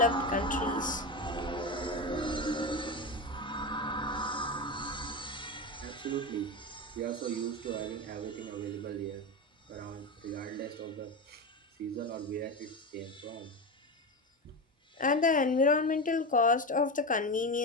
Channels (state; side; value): normal; both; correlation 0.19